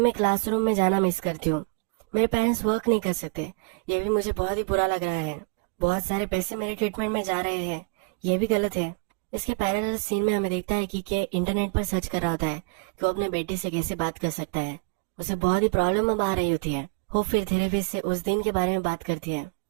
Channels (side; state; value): left; quieter; 33.7 dB